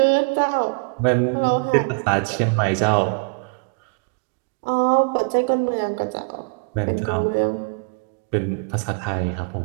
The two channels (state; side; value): quieter; left; 35.8 dB